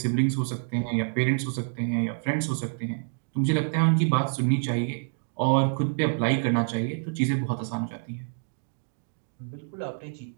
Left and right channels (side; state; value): left; silent; digital silence